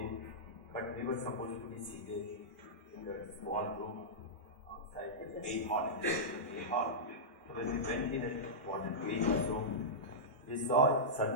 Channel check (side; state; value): both; normal; correlation -0.13